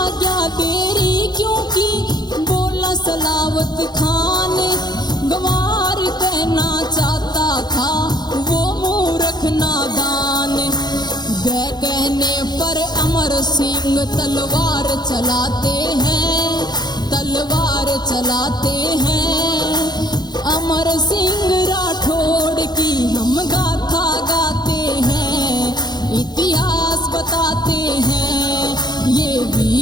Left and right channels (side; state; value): right; late; 0.20 ms